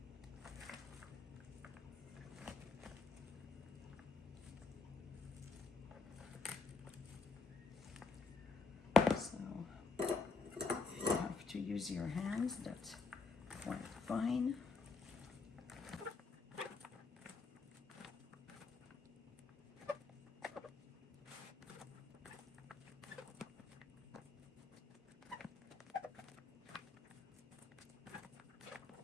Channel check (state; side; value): quieter; right; 4.1 dB